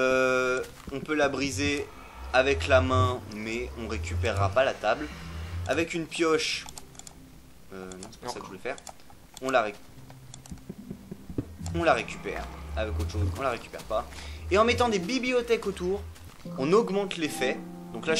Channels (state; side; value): identical; both; correlation 1.00